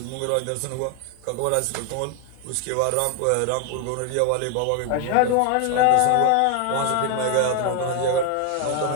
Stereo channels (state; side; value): different; both; correlation 0.00